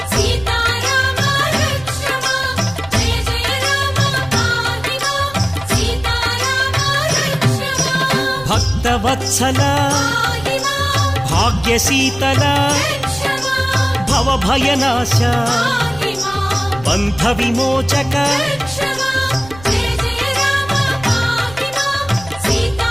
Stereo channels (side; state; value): right; noise; rumble, 18 dB below the sound